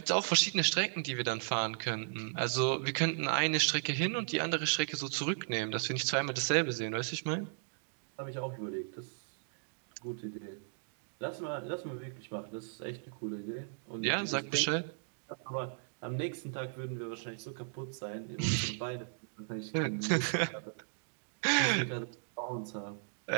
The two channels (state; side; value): silent; left; digital silence